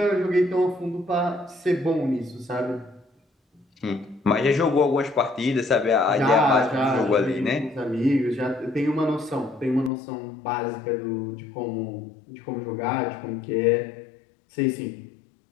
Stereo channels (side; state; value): right; drops out; at 9.9 s